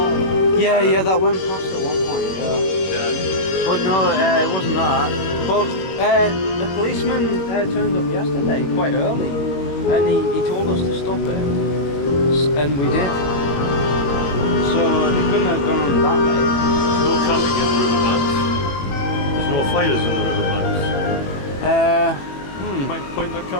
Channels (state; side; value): late; right; 21 ms